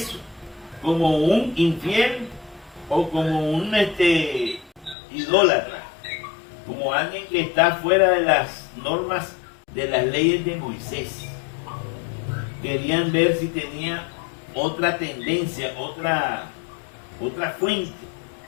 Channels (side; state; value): right; drops out; at 5.0 s